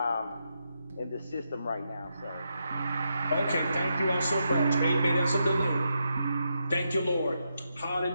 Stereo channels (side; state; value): both; inverted; correlation -0.83